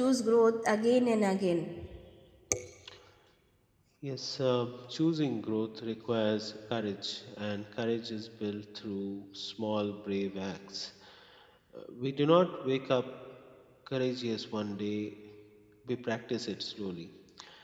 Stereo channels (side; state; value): both; identical; correlation 1.00